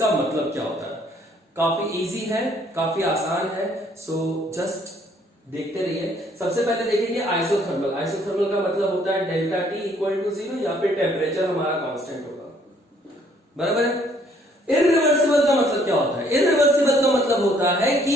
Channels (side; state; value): both; normal; correlation 0.63